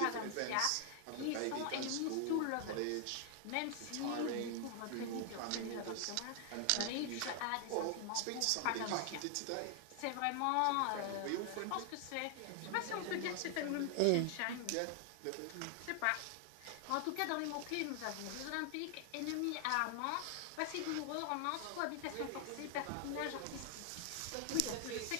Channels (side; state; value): both; different; correlation 0.00